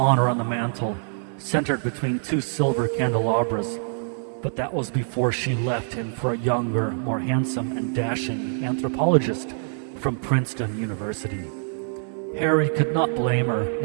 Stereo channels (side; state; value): left; silent; digital silence